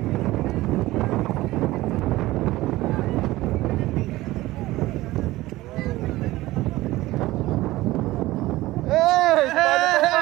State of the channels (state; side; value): quieter; left; 17.8 dB